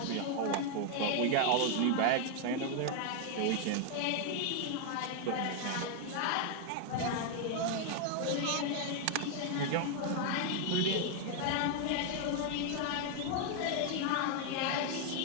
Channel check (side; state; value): both; different; correlation 0.00